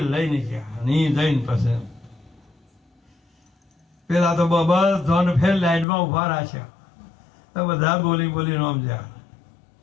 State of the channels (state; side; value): drops out; right; at 5.9 s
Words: લઈને ગયા ની જઈને પછી પેલા તો બધાને ફેર લાઈનમાં ઉભા રાખ્યા બધા બોલી બોલીને સમજ્યા